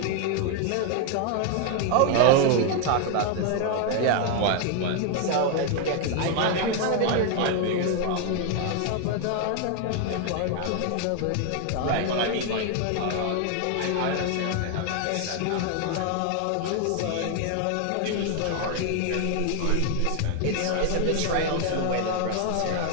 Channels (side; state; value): both; different; correlation 0.01